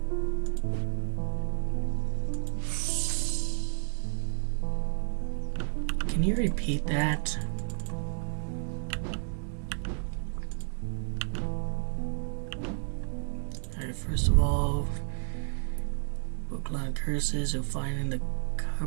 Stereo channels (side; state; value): left; silent; digital silence